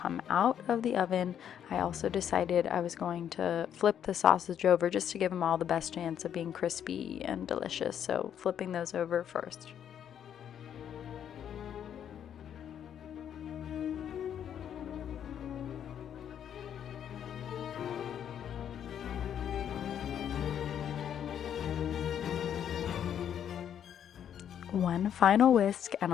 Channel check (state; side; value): quieter; right; 9.3 dB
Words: out of the oven. I also decided I was going to flip the sausage over just to give them all the best chance of being crispy and delicious. So flipping those over first. One final whisk and